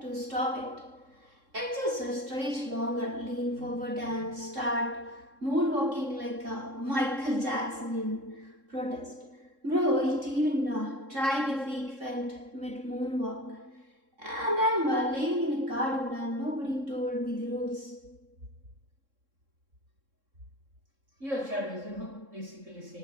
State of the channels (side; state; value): left; late; 3.7 ms